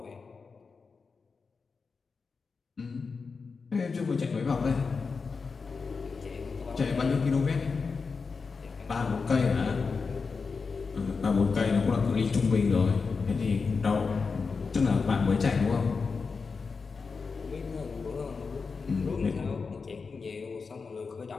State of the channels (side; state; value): right; quieter; 4.9 dB